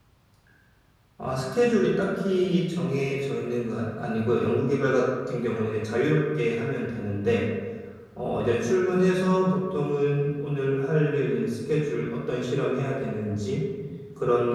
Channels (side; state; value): both; identical; correlation 1.00